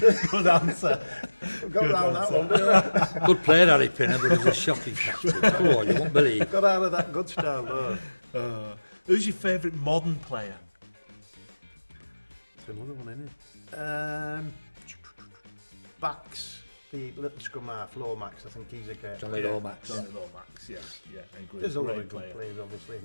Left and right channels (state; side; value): inverted; both; correlation -1.00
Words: Good answer. I've got around that one, didn't I? Good player, Harry Pinner, but he was a shocking captain. Come on, you won't believe. Got out of that good style there. Who's your favourite modern player? It's another one, isn't it? Backs, the little scrum half, Lomax, I think he's a great Johnny Yeah, Lomax. Johnny Lomax. Yeah. Yeah. I agree. There's a lot Great of good player. players, obviously,